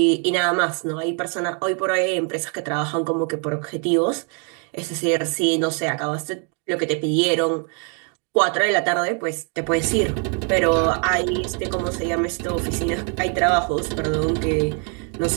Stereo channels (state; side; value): quieter; left; 39.6 dB